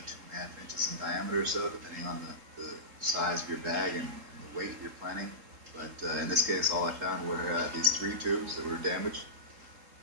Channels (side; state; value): left; late; 3.8 ms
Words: inches in diameter or so, depending on the size of your bag and the weight you're planning. But in this case, all I found were these 3 tubes that were damaged.